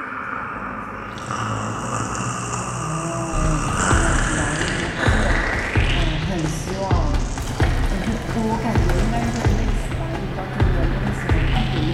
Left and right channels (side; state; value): both; identical; correlation 1.00